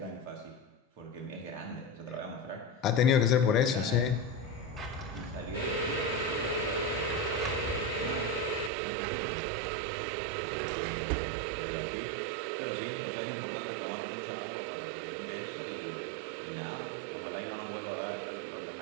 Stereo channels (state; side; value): drops out; left; at 8.7 s